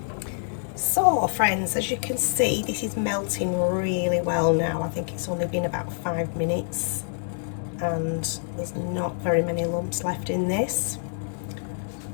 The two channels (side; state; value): right; silent; digital silence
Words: So friends, as you can see, this is melting really well now. I think it's only been about 5 minutes and there's not very many lumps left in this.